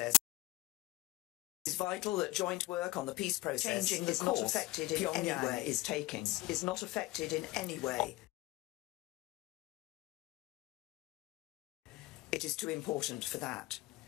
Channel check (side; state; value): right; quieter; 18.9 dB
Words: changing the course Pyongyang is taking is not affected in any way. It is too important for that.